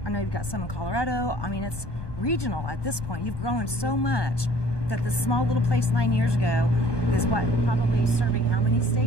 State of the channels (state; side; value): late; right; 1.2 ms